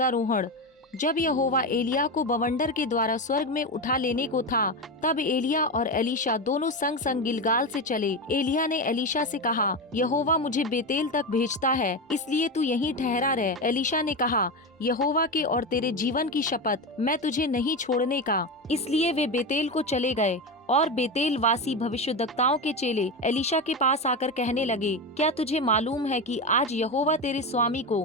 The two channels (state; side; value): normal; both; correlation 0.17